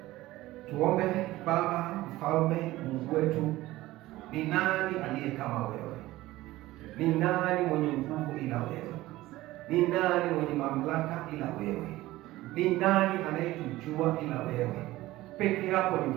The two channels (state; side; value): quieter; left; 17.2 dB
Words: Tuombe. Baba Mfalme, Mungu wetu, ni nani aliye kama wewe? Ni nani mwenye nguvu ila wewe? Ni nani mwenye mamlaka ila wewe? Ni nani anayetujua ila wewe? Peke yako ni